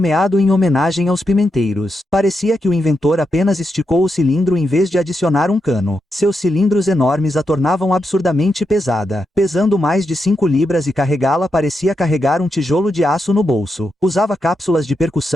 em homenagem aos pimenteiros. Parecia que o inventor apenas esticou o cilindro em vez de adicionar um cano. Seus cilindros enormes a tornavam absurdamente pesada. Pesando mais de 5 libras e carregá-la parecia carregar um tijolo de aço no bolso. Usava cápsulas de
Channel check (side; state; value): both; normal; correlation 0.85